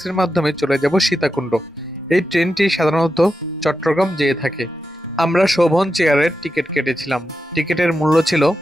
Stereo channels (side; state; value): both; normal; correlation 0.89